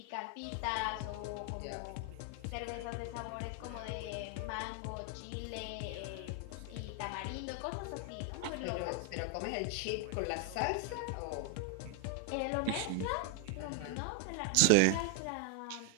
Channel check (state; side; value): different; both; correlation 0.00